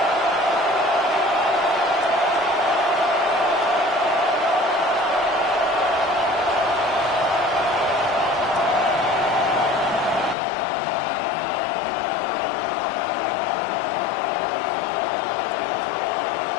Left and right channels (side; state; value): right; drops out; at 10.4 s